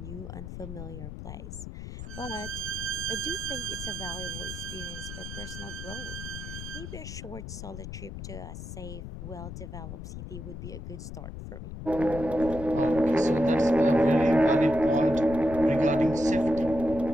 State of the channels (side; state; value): left; noise; rumble, 9 dB below the sound